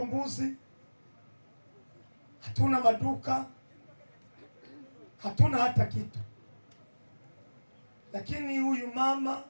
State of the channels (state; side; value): inverted; both; correlation -1.00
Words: mbuzi, hatuna maduka, hatuna hata kitu. Lakini huyu mama